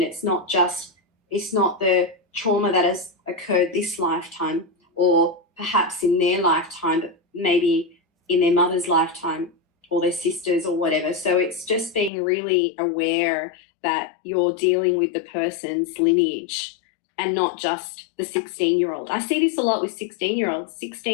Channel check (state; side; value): drops out; right; at 12.1 s